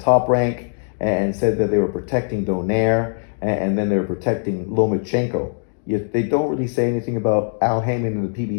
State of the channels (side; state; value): right; silent; digital silence